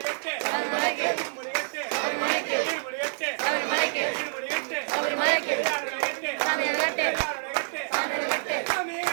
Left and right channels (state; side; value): silent; left; 60 dB below the other